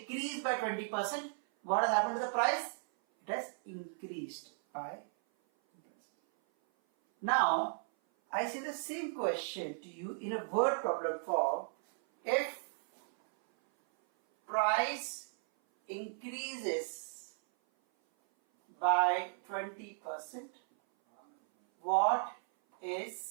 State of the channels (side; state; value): left; silent; 54 dB below the other